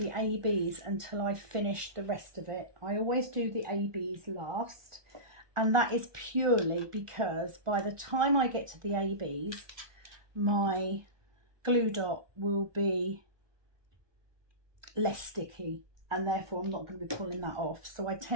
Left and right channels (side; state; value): left; late; 1.2 ms